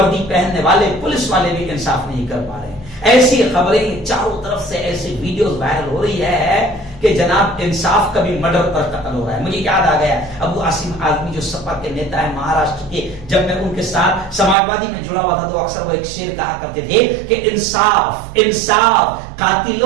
پہننے والے پولیس والے بھی انصاف نہیں کر پا رہے. ایسی خبریں چاروں طرف سے, ایسی ویڈیوز وائرل ہو رہی ہے کہ جناب انصاف کا بھی مرڈر پر قتل ہو رہا ہے. مجھے یاد آ گیا ابو عاصم آزمی جو سپا کے نیتا ہے مہاراشٹر کے, جب میں ان کے ساتھ سماجوادی میں جڑا ہوا تھا تو اکثر وہ ایک شعر کہا کرتے تھے کہ انصاف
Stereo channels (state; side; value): drops out; left; at 14.6 s